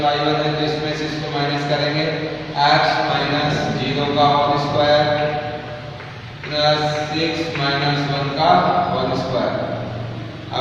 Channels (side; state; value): both; identical; correlation 1.00